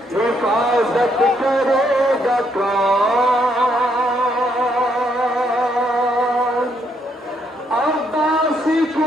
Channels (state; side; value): normal; both; correlation 0.73